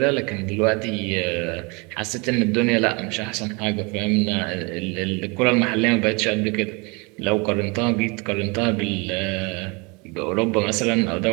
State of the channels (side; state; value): left; quieter; 29.2 dB